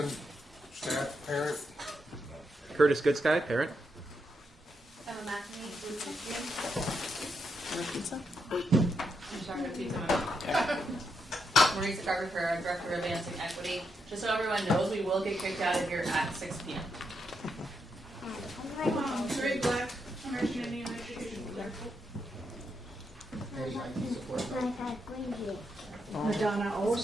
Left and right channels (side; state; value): both; normal; correlation 0.82